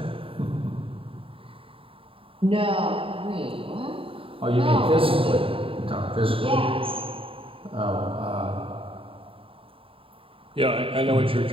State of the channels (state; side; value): late; left; 0.26 ms